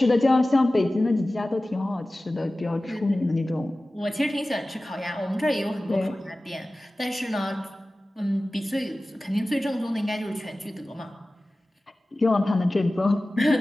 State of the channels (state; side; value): normal; both; correlation 0.97